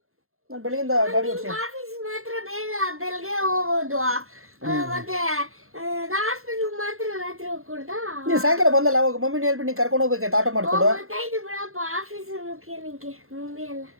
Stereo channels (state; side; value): late; left; 0.62 ms